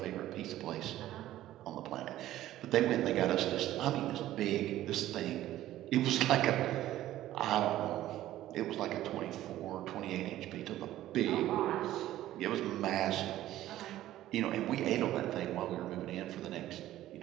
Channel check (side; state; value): left; quieter; 14.0 dB